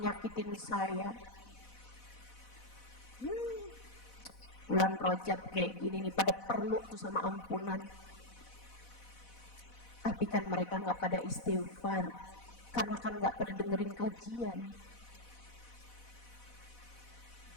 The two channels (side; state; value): right; late; 4.1 ms